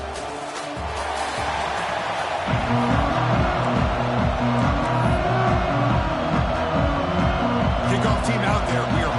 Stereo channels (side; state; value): both; identical; correlation 1.00